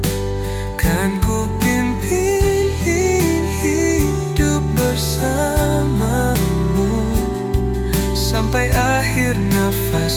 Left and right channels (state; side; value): identical; both; correlation 1.00